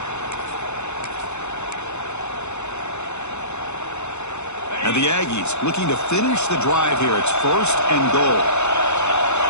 And the Aggies looking to finish the drive here. It's first and goal.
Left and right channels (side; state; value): right; late; 0.82 ms